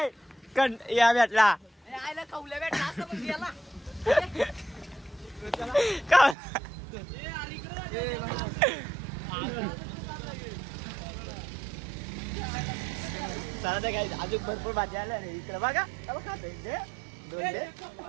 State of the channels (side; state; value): left; drops out; at 6.4 s